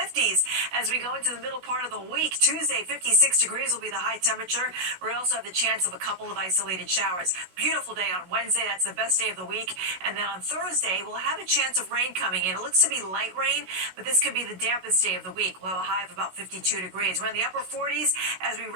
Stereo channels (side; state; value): left; late; 16 ms